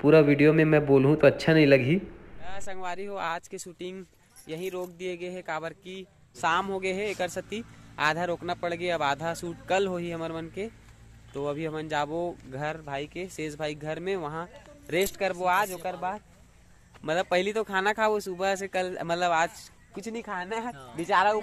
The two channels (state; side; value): identical; both; correlation 1.00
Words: पूरा वीडियो में मैं बोलूँ तो अच्छा नहीं लगी। संगवारी हो आज के शूटिंग यही रोक दिए गए है काबर की शाम हो गए है एक सती, आधा रोकना पड़ गया। अब आधा शूट कल हो ही हमार मन के। तो अभी हमन जाबो घर भाई के शेष भाई घर में, वहाँ रेस्ट करबो आज। ओकर बाद मतलब पहली तो खाना खाओ सुबह से, कल मतलब आज कुछ नहीं खाना है, बेचारा